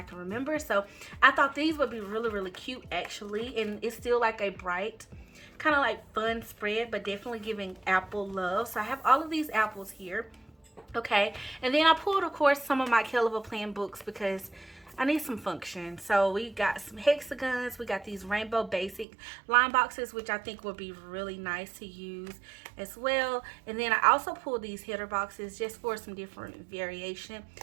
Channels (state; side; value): drops out; left; at 19.1 s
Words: remember. So I thought these would be really cute actually, and it's still like a bright kind of like fun spread, but definitely giving apple love. So I have all of these apples here, okay, and then I pulled of course some of my KELL plan books because I need some function. So we got some hexagons, we got these rainbow basic line boxes, which I think would be really nice to use as well. And then I also pulled these header boxes just for some different variation